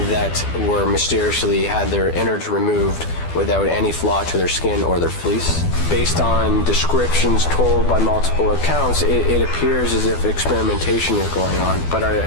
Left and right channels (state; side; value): late; right; 12 ms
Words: that were mysteriously had their innards removed without any flaw to their skin or their fleece. Based on descriptions told by multiple accounts, it appears as if experimentation is going on, but